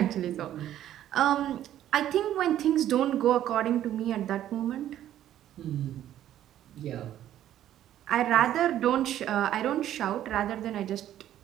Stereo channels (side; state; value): left; quieter; 11.9 dB